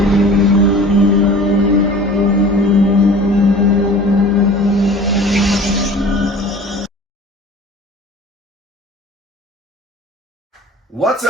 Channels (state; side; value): normal; both; correlation 0.43